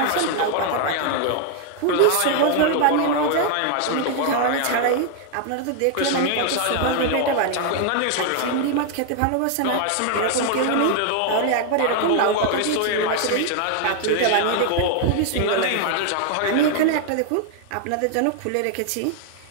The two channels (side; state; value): both; different; correlation 0.00